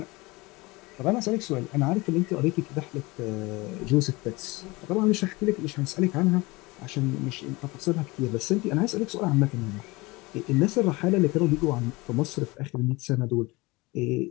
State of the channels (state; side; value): quieter; right; 23.3 dB